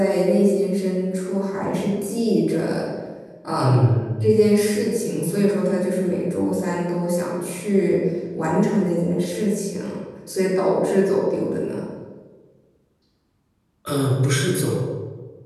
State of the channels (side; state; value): both; identical; correlation 1.00